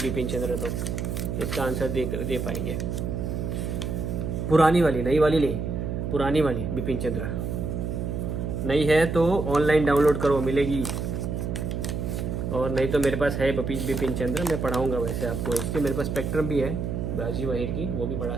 बिपिन चंद्र तो इसका आंसर दे पाएंगे। पुरानी वाली, नई वाली नहीं, पुरानी वाली बिपिन चंद्र। नहीं है तो ऑनलाइन डाउनलोड करो, मिलेगी, और नहीं तो मेरे पास है बिपिन चंद्र, मैं पढ़ाऊँगा वैसे आपको। इसके मेरे पास स्पेक्ट्रम भी है राजीव अहिर की, वो भी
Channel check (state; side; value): noise; right; hum, 3 dB below the sound